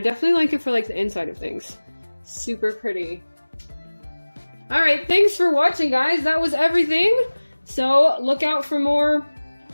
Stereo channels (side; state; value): both; inverted; correlation -1.00